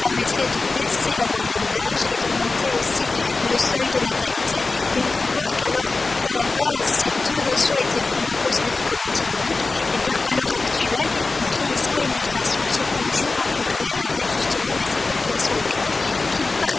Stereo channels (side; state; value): right; quieter; 3.7 dB